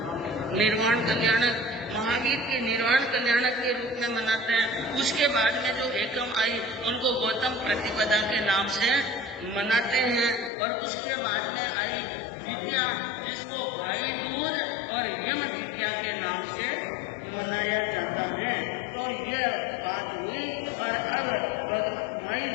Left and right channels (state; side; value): drops out; right; at 10.5 s